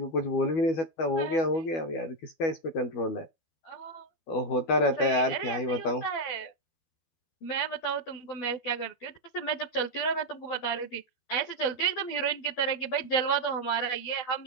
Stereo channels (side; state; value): right; late; 12 ms